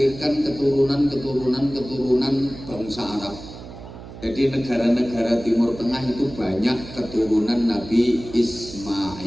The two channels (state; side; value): noise; right; hum, 14 dB below the sound